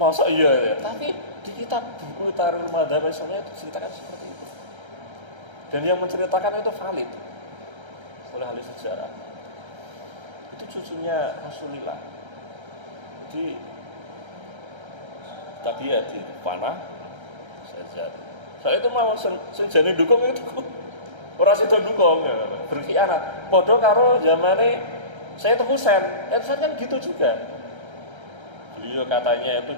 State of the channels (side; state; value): left; late; 1.3 ms